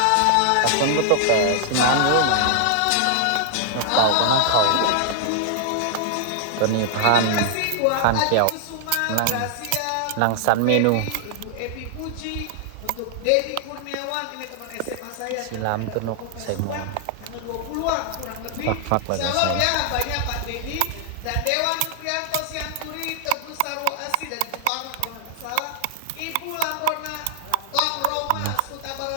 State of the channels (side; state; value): both; different; correlation 0.00